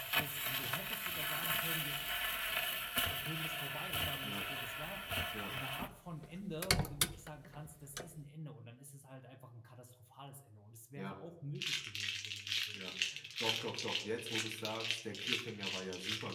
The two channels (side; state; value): both; identical; correlation 1.00